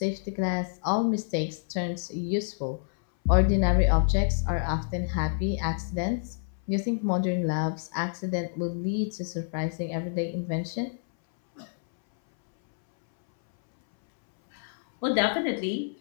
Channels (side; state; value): right; silent; 59 dB below the other